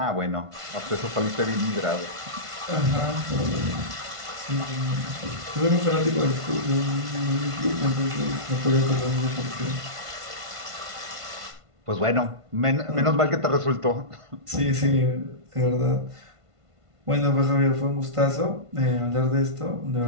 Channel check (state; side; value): late; left; 1.5 ms